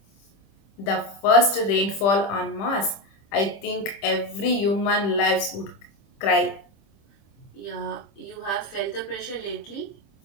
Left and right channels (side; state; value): right; late; 25 ms